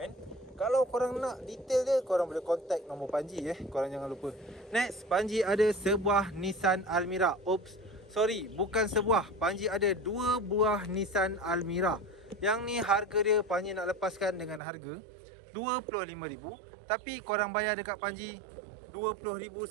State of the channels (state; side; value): drops out; left; at 14.6 s